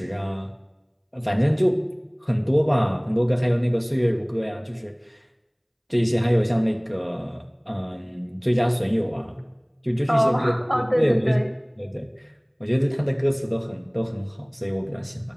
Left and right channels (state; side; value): identical; both; correlation 1.00